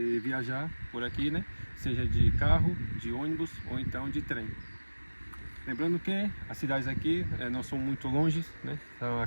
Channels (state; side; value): inverted; both; correlation -1.00